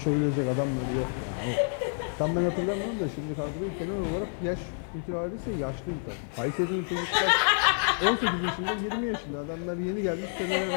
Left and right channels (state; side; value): silent; right; digital silence